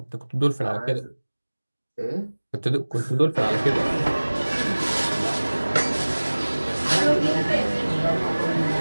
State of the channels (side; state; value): both; inverted; correlation -1.00